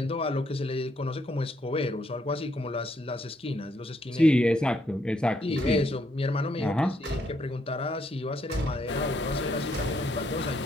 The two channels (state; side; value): normal; both; correlation 0.73